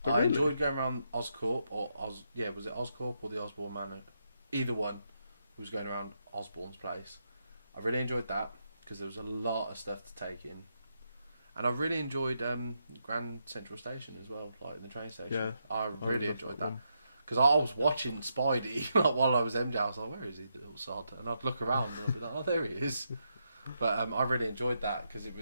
Oh, I really? enjoyed going around Oscorp, was it Oscorp or the Osborn Manor? Either one was going around Osborn's place. I really enjoyed that because there was a lot of stuff to take in. And I really enjoyed Grand Central Station as well, like in the train station. Yeah, I really loved enjoyed that that. one. Because I was watching Spidey like, while I was MJ. I was like, where is he, the little sod? And I'd look around and I'd be like, oh, there he is. But I really enjoyed that because it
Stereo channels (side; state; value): both; inverted; correlation -0.82